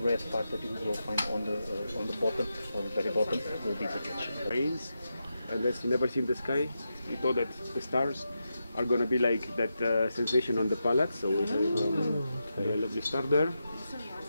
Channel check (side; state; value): both; inverted; correlation -0.88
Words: red part that you will find on the bottom, on the very bottom, will be the ketchup. Rains, unless you never see the sky, we thought that the stars are gonna be like that sensation on the palate. So we have a lovely star there.